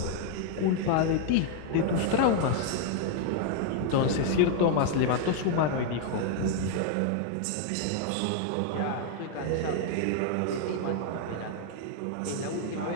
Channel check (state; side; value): different; both; correlation 0.00